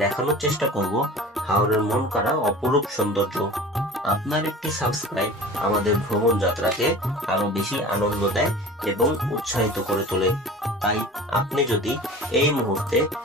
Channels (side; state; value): both; normal; correlation 0.39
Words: দেখানোর চেষ্টা করব হাওরের মন কাড়া অপরূপ সৌন্দর্য। আপনার একটি সাবস্ক্রাইব আমাদের ভ্রমণ যাত্রাকে আরো বেশি আনন্দ দেয় এবং উৎসাহিত করে তোলে। তাই আপনি যদি এই মুহূর্তে